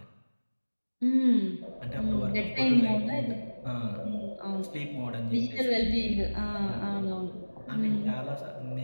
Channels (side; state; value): both; inverted; correlation -1.00